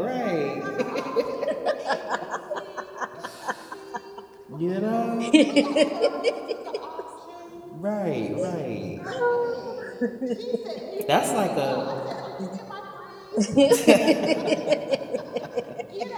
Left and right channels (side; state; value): both; identical; correlation 1.00